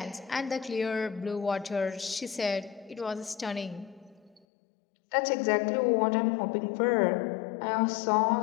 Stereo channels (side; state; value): right; drops out; at 4.4 s